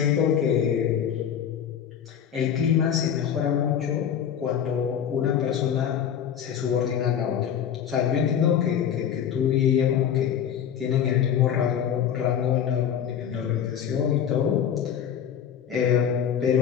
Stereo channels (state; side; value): quieter; right; 8.8 dB